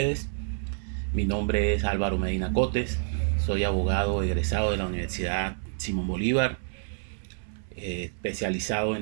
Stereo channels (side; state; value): left; silent; 59 dB below the other